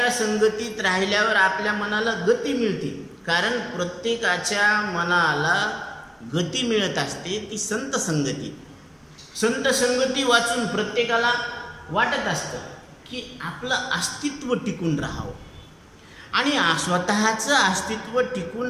संगतीत राहिल्यावर आपल्या मनाला गती मिळते, कारण प्रत्येकाच्या मनाला गती मिळत असते ती संत संगती। संत संगती वाचून प्रत्येकाला वाटत असतं की आपलं अस्तित्व टिकून राहावं, आणि स्वतःचं अस्तित्व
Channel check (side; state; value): both; identical; correlation 1.00